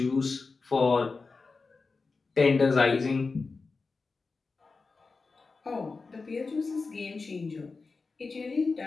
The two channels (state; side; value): quieter; right; 4.2 dB